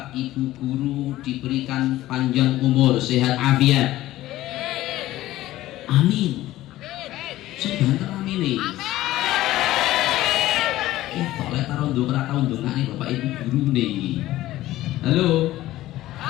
ibu guru diberikan panjang umur, sehat afiat. Amin. Sebentar amin nih. Oleh taruh nih bapak ibu guru nih. Halo.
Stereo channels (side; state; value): right; quieter; 15.6 dB